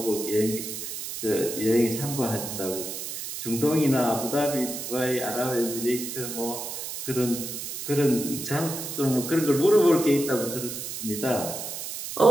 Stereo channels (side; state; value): right; noise; hiss, 7 dB below the sound